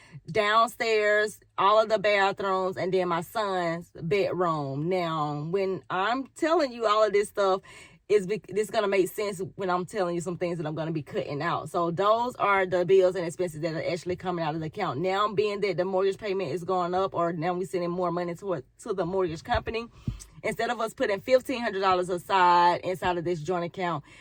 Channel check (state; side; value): identical; both; correlation 1.00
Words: downstairs, all of the bathrooms, and then my son's bedroom. Now, when I'm telling you all of this stuff, this going to make sense when I'm telling you some things that I'm going to be cutting out. So those are the bills and expenses that are actually coming out of the account. Now, being that the mortgage payment is going up, or now we're sending more money to the mortgage company, instead of us putting $1,500 aside inside of this joint account,